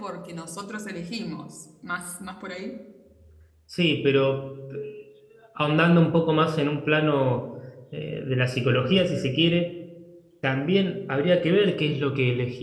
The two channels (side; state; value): both; identical; correlation 1.00